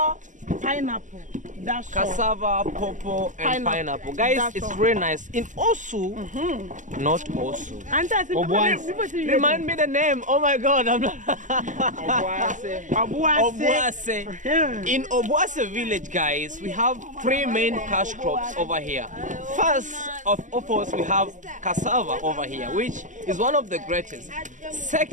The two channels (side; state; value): left; late; 0.37 ms